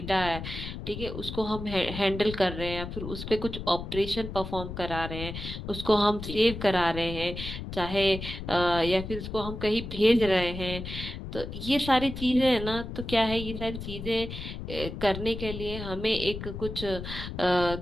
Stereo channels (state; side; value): noise; left; rumble, 8 dB below the sound